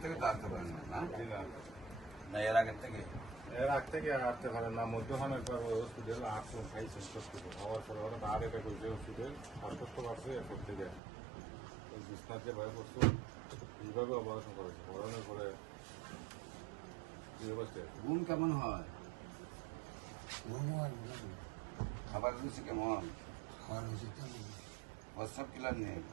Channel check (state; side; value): drops out; left; at 11.0 s